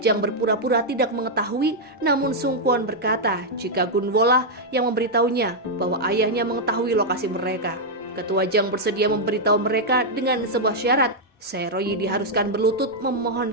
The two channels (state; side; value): normal; both; correlation -0.03